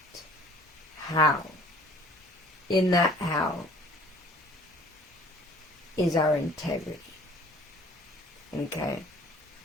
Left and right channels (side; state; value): both; normal; correlation 0.52